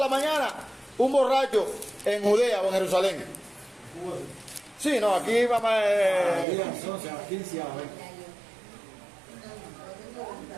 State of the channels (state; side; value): drops out; left; at 6.5 s